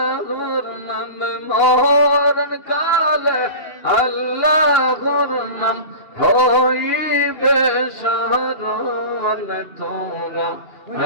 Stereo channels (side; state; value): right; late; 2.8 ms